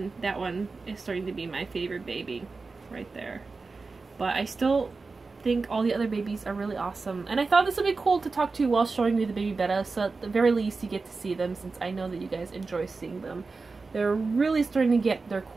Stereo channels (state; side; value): quieter; left; 4.1 dB